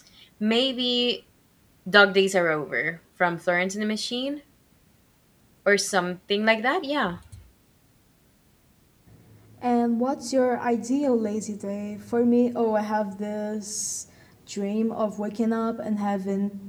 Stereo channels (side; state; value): both; identical; correlation 1.00